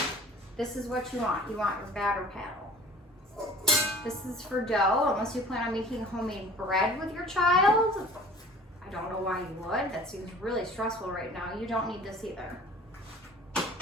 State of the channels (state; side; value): normal; both; correlation 0.46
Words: This is what you want. You want your batter paddle. This is for dough, unless you plan on making homemade bread with your child. I don't know why you would. That seems really stressful right now. You don't need this either.